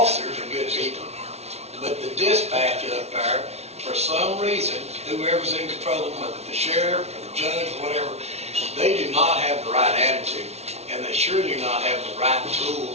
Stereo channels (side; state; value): left; late; 0.31 ms